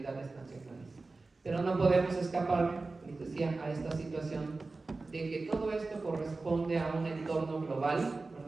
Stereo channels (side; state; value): left; quieter; 3.6 dB